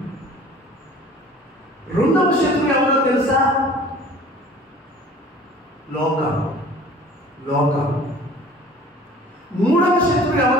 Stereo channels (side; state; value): both; normal; correlation 0.47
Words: రెండవ శత్రువు ఎవరో తెలుసా? లోకం. మూడవ శత్రువు